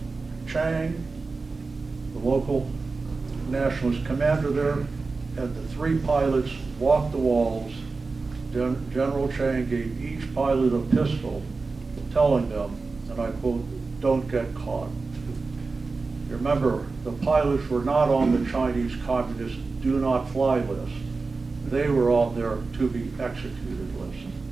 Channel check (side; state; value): left; quieter; 4.0 dB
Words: Chang, the local nationalist commander there, and the 3 pilots walked the walls, General Chang gave each pilot a pistol, telling them, and I quote, "Don't get caught." Remember, the pilots were not on the Chinese Communist do not fly list. They were on their to be executed list.